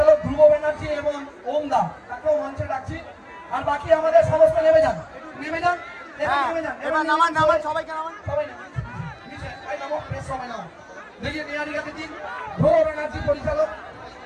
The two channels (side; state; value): both; identical; correlation 1.00